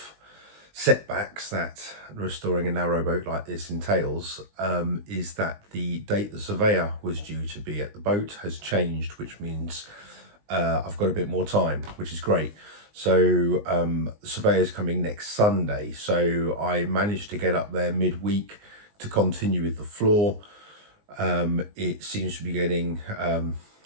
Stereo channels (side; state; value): left; late; 19 ms